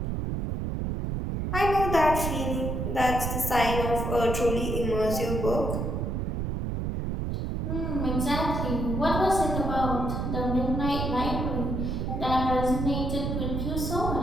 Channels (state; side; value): noise; right; rumble, 2 dB below the sound